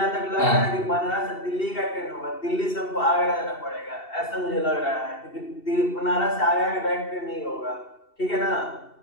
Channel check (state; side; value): late; right; 2.7 ms